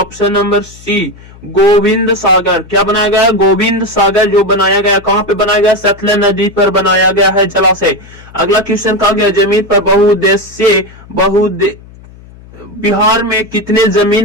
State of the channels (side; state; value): left; noise; hum, 22 dB below the sound